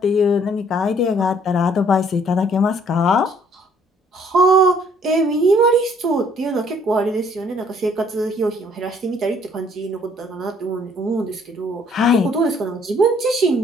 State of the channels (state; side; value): normal; both; correlation 0.62